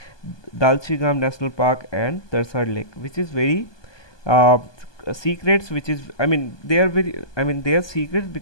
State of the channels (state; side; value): late; right; 1.2 ms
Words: Dalchigam National Park, and Tarsar Lake, which is very uh, secrets, which is, I mean, they are secrets